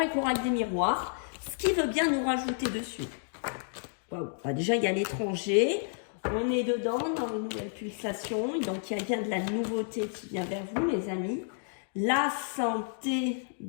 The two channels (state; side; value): silent; right; digital silence